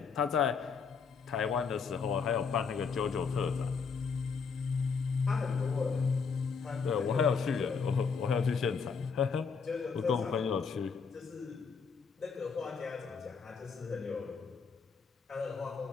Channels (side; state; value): right; quieter; 5.6 dB